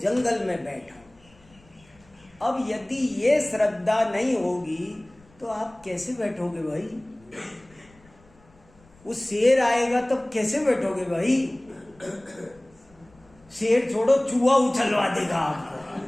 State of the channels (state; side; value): noise; left; rumble, 29 dB below the sound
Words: में बैठा, अब यदि ये श्रद्धा नहीं होगी तो आप कैसे बैठोगे भाई? वो शेर आएगा तब कैसे बैठोगे भाई? शेर छोड़ो, चूहा उछलवा देगा आपको।